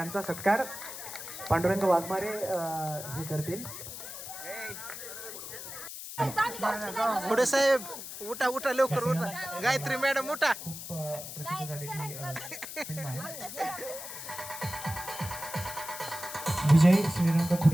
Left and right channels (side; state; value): left; noise; hiss, 10 dB below the sound